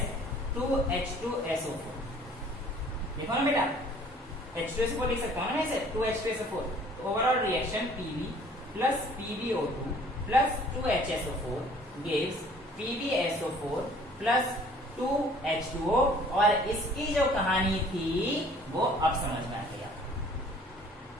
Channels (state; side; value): normal; both; correlation 0.54